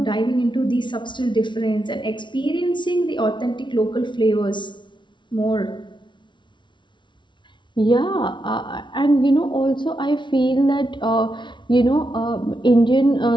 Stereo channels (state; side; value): late; right; 0.23 ms